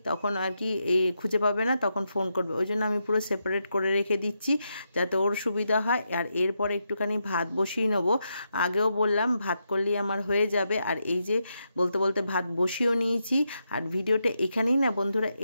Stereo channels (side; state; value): both; inverted; correlation -0.84